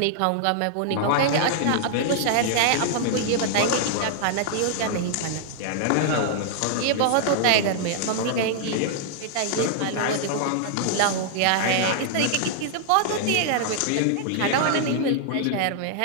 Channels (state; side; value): different; both; correlation -0.01